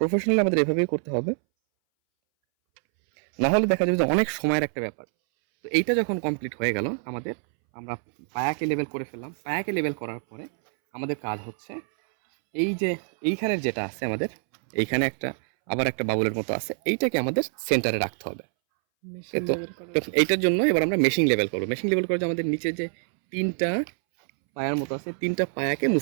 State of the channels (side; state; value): left; silent; 61 dB below the other